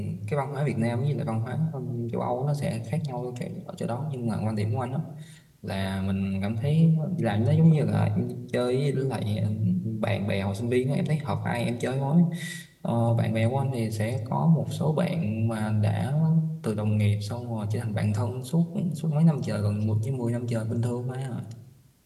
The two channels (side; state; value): both; identical; correlation 1.00